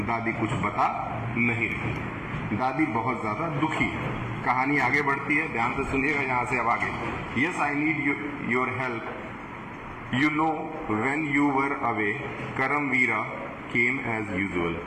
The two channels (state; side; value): identical; both; correlation 1.00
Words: दादी कुछ बता नहीं रही। दादी बहुत ज्यादा दुखी है। कहानी आगे बढ़ती है, ध्यान से सुनिएगा यहां से अब आगे। Yes, I need your help. You know when you were away Karamveera came as usual.